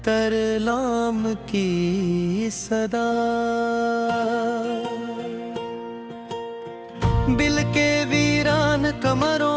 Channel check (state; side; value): identical; both; correlation 1.00